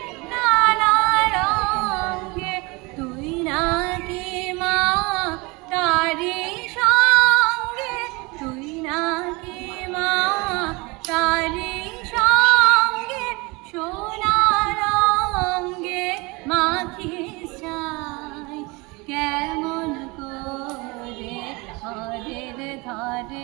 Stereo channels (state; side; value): quieter; left; 25.8 dB